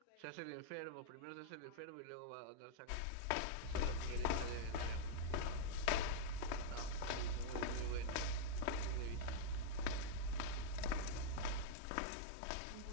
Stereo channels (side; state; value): both; different; correlation -0.02